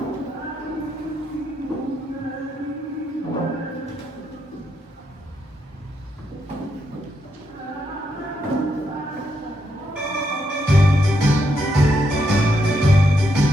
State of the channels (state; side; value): normal; both; correlation 0.79